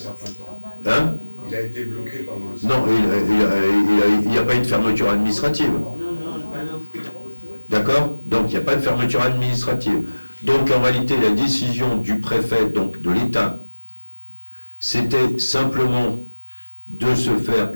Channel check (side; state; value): both; inverted; correlation -1.00